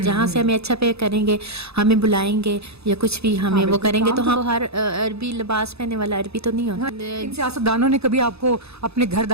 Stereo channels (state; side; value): late; left; 0.79 ms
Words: جہاں سے ہمیں اچھا پے کریں گے ہمیں بلائیں گے یا کچھ بھی ہمیں وہ کریں گے. تو ہم ہر عربی لباس پہننے والا عربی تو نہیں ہوتا. ان سیاستدانوں نے کبھی آپ کو اپنے گھر